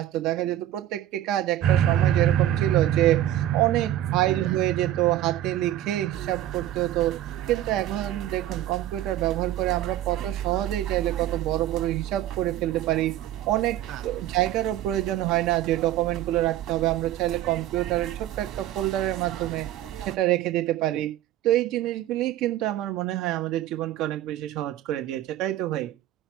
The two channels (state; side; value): quieter; left; 13.1 dB